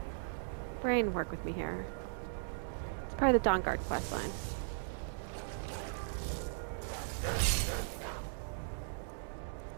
brain, work with me here. It's part of the Dawnguard questline.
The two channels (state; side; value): silent; left; 53 dB below the other